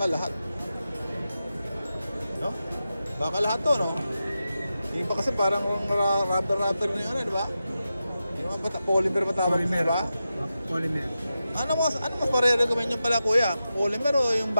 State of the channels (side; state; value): both; inverted; correlation -0.91